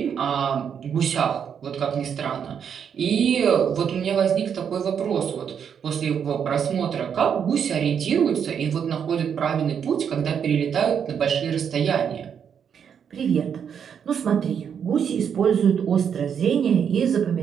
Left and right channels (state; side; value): quieter; left; 7.7 dB